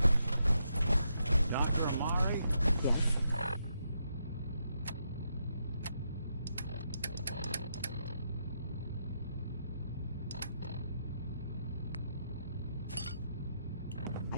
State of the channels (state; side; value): inverted; both; correlation -0.81